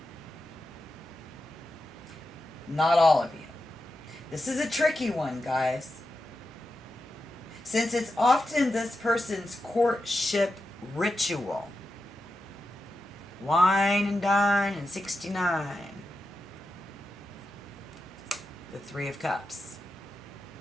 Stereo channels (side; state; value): both; normal; correlation 0.89